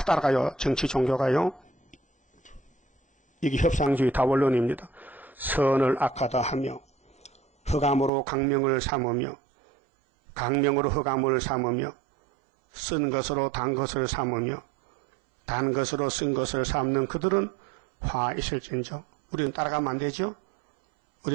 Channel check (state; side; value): drops out; left; at 8.1 s